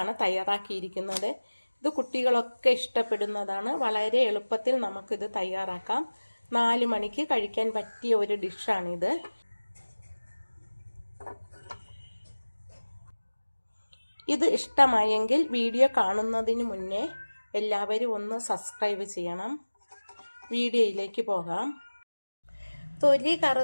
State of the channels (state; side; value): inverted; both; correlation -1.00